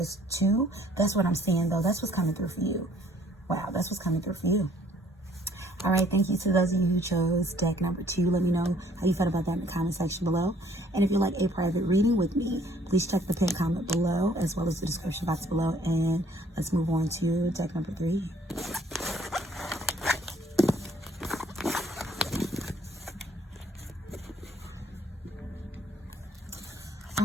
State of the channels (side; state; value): both; normal; correlation 0.60